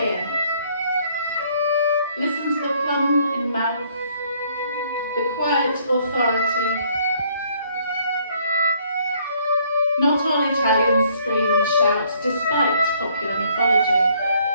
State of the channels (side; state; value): both; inverted; correlation -0.64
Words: Listen to the plum in mouth, the quiet authority. Not all Italians scream and shout despite popular mythology.